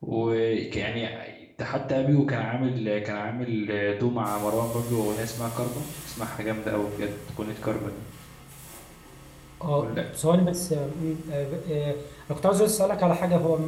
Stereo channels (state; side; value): identical; both; correlation 1.00